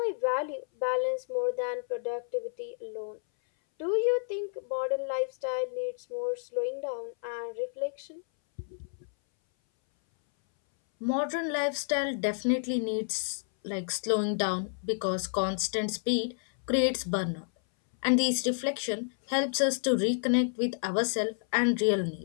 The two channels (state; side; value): silent; right; 58 dB below the other